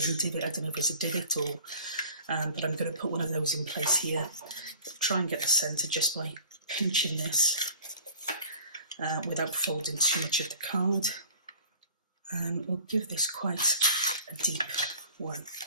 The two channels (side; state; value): both; inverted; correlation -0.46